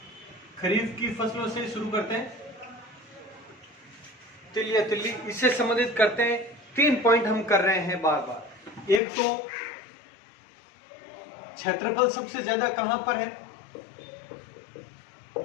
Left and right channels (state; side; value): drops out; right; at 9.0 s